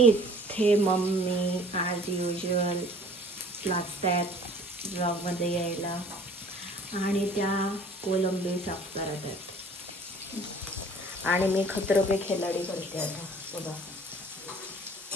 इथे मम्मी ॲज युजल लागतात ब्लॉगमध्ये यायला, आणि त्या कोलंबी साफ करत आहेत. आणि मी खतरों के खिलाडी करते आता. बघा,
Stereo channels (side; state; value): both; normal; correlation 0.51